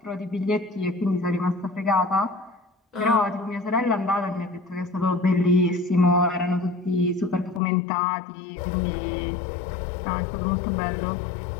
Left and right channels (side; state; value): right; drops out; at 7.6 s